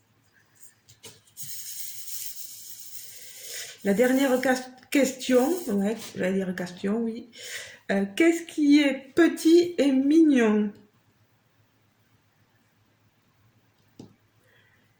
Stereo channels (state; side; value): identical; both; correlation 1.00